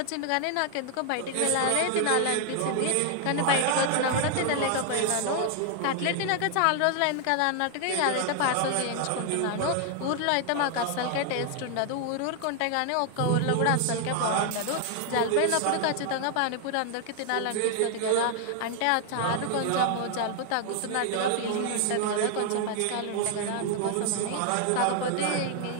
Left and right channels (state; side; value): different; both; correlation 0.00